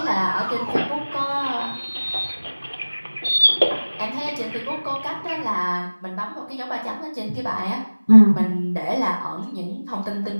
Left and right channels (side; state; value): both; inverted; correlation -1.00